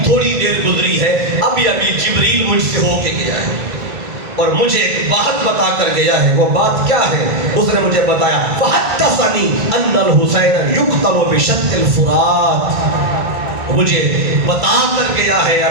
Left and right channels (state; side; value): late; left; 1.5 ms